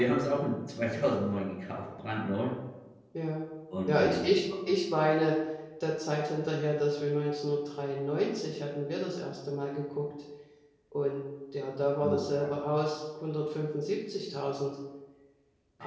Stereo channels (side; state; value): both; identical; correlation 1.00